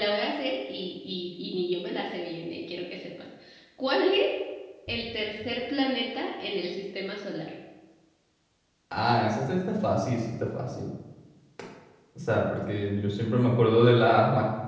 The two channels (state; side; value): identical; both; correlation 1.00